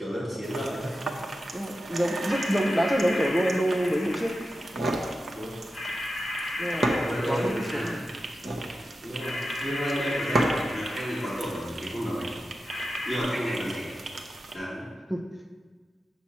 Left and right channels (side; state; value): both; normal; correlation 0.91